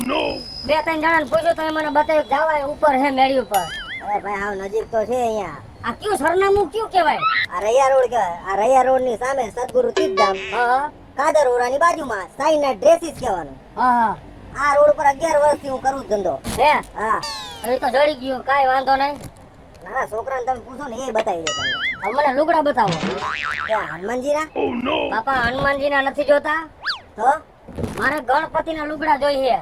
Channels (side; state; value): both; identical; correlation 1.00